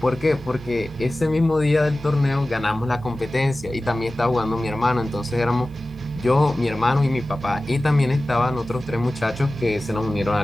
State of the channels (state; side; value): normal; both; correlation 0.96